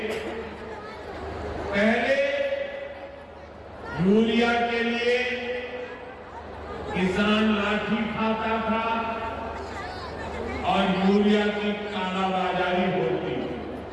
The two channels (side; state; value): both; identical; correlation 1.00